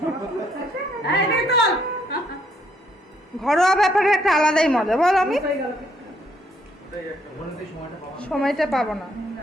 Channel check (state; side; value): normal; both; correlation 0.70